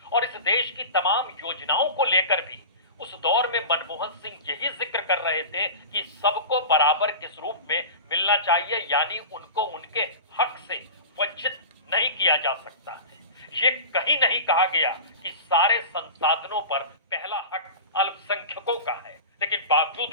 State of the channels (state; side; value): inverted; both; correlation -0.32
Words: और इस देश की तमाम योजनाओं को लेकर भी उस दौर में मनमोहन सिंह यही जिक्र कर रहे थे कि सबको बराबर किस रूप में मिलना चाहिए, यानी उनको उनके हक से वंचित नहीं किया जा सकता है। ये कहीं नहीं कहा गया कि सारे संसाधनों पर पहला हक अल्पसंख्यकों का है, लेकिन बावजूद